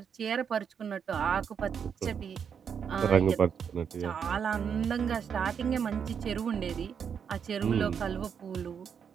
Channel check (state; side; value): quieter; left; 7.2 dB